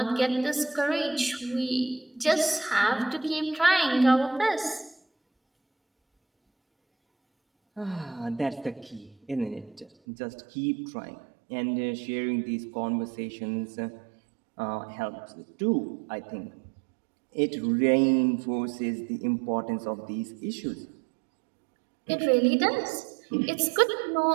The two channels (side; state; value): left; drops out; at 9.9 s